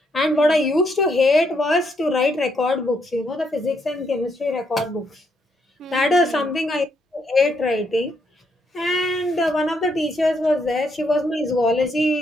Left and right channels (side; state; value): both; normal; correlation 0.75